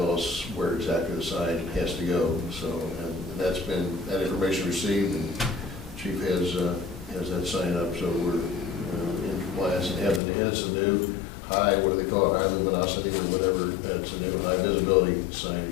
us where exactly the sign has to go, so, and that's been, that information received, and Chief has that sign up, so we're in compliance, and it's a new high, what do they call it, high luminosity or whatever, it's a new high visibility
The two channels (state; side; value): drops out; right; at 10.2 s